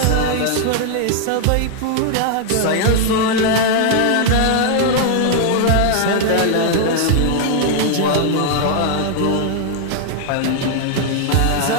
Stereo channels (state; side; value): different; both; correlation 0.00